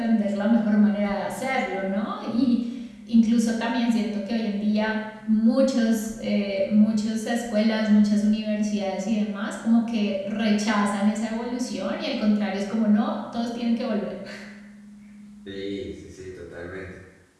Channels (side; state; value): both; identical; correlation 1.00